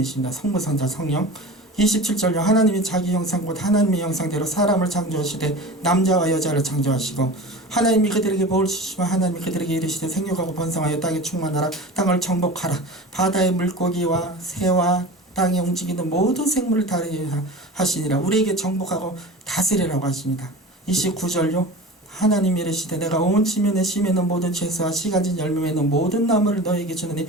성부 성자 성령. 27절요. 하나님이 자기 형상 곧 하나님의 형상대로 사람을 창조하시되 남자와 여자를 창조하시고 하나님이 그들에게 복을 주시면 하나님이 그들에게 이르시되 생육하고 번성하여 땅에 충만하라. 땅을 정복하라. 바다의 물고기와 새와 땅에 움직이는 모든 생물을 다스리라 하시니라. 우리에게 정복하고 다스리라고 하십니다. 29절요. 하나님이 이르시되 내가 온 지면에 심에는 모든 채소와 씨가진 열매에는 모든 나무를 너에게 주느니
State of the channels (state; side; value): normal; both; correlation 0.34